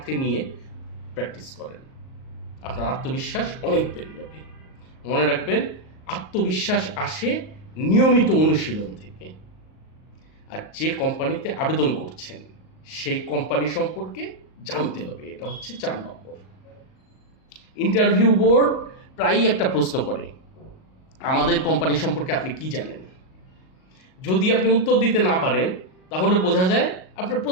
নিয়ে প্র্যাকটিস করেন। আপনার আত্মবিশ্বাস অনেক বেড়ে যাবে। মনে রাখবেন, আত্মবিশ্বাস আসে নিয়মিত অনুশীলন থেকে। আর যে কোম্পানিতে আবেদন করছেন সেই কোম্পানি সম্পর্কে জানতে হবে, এটা হচ্ছে 4 নম্বর। ইন্টারভিউ বোর্ড প্রায়ই একটা প্রশ্ন করে, আমাদের কোম্পানি সম্পর্কে আপনি কি জানেন? যদি আপনি উত্তর দিতে না পারেন, তাহলে বোঝা যায় আপনার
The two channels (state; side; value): late; right; 38 ms